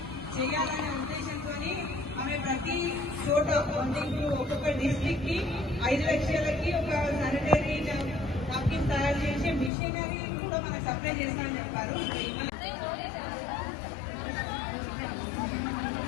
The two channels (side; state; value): right; drops out; at 9.7 s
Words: చేయాలనే ఉద్దేశంతో ఆమె ప్రతి చోట అంటే ఇప్పుడు ఒక్కొక్క డిస్ట్రిక్ట్ కి 5 లక్షలకి ఒక శానిటరీ నాప్కిన్ తయారు చేసే మిషనరీ కూడా మనకు సప్లై చేస్తామని చెప్పారు.